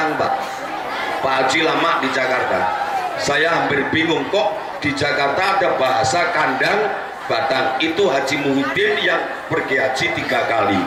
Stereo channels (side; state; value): both; identical; correlation 1.00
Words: Pak. Pak Haji lama di Jakarta, saya hampir bingung kok di Jakarta ada bahasa kandang batang. Itu Haji Muhyiddin yang pergi haji 3 kali